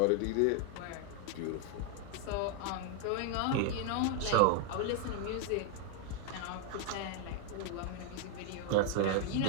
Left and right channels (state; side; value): different; both; correlation 0.00